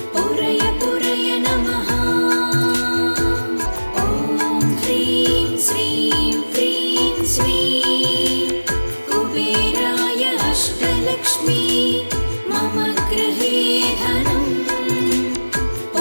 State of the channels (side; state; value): both; inverted; correlation -1.00